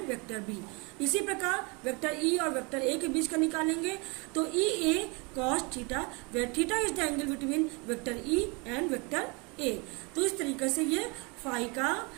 vector B. इसी प्रकार वेक्टर ई और वेक्टर ए के बीच का निकालेंगे तो E A cos theta, where theta is the angle between vector E and vector A. तो इस तरीके से ये फाई का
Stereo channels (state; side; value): quieter; left; 30.1 dB